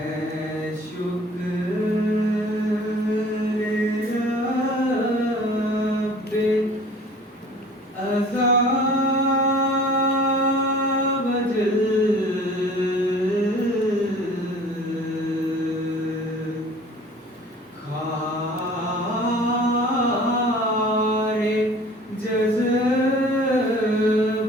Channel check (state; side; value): normal; both; correlation 0.48